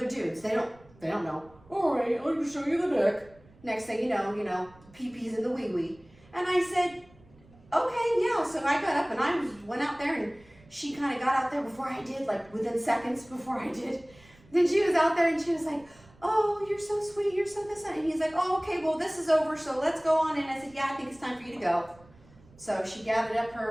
dudes. They don't know. All right, I'll just show you the deck. Next thing you know, pee-pees and the wee-wee. And I said, okay, yeah. So I got up and I went out there, and she kind of got out there before I did, like within seconds before I did. Then she was out there and she was like, oh, you're so sweet, you're so this. And he's like, oh, okay, well, this is over, so let's go on in. I said, yeah, I think it's time for you to go. So she gathered up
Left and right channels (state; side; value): noise; right; rumble, 26 dB below the sound